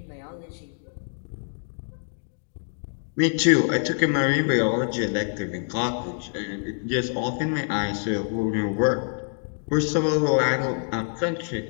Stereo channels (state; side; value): silent; right; 61 dB below the other